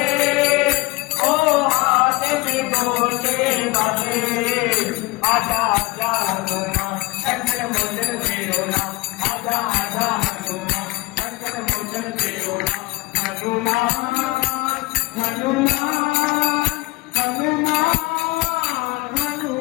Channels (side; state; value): right; quieter; 22.5 dB